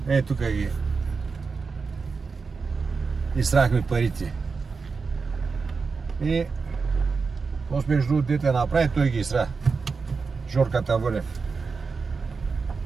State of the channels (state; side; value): quieter; left; 4.8 dB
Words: Тук ги изтрахме парите. И после между другото дете направи, той ги изтра. Жорката Вълев.